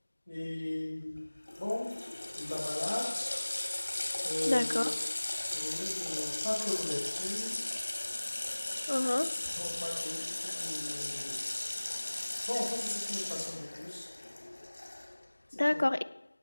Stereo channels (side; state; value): both; inverted; correlation -1.00